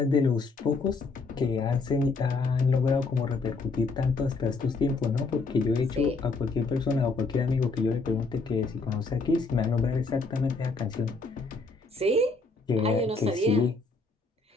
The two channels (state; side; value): quieter; right; 3.8 dB